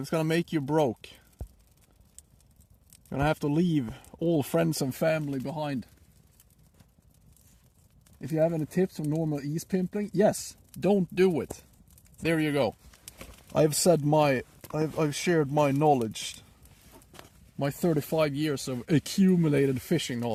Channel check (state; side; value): identical; both; correlation 1.00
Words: it's gonna make you broke. You're gonna have to leave all friends and family behind. If you have any tips on normal ease pimpling, yes, don't do it. There you go. I've shared my knowledge, my 35 years of accumulated fishing